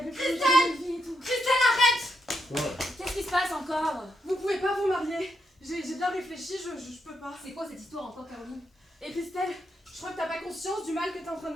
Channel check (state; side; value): normal; both; correlation 0.80